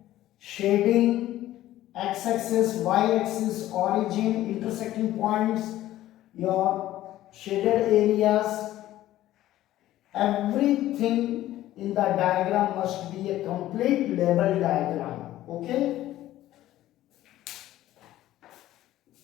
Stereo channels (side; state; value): right; quieter; 14.3 dB